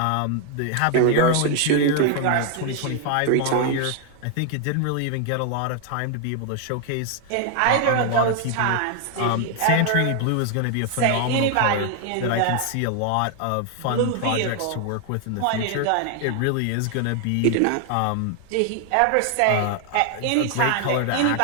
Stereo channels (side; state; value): both; different; correlation 0.00